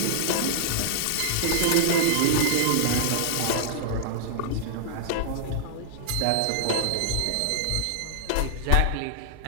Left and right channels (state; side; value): different; both; correlation -0.01